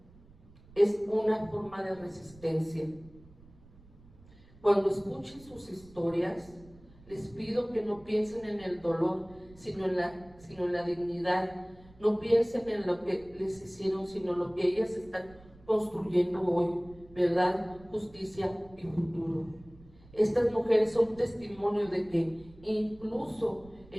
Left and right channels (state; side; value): noise; right; rumble, 24 dB below the sound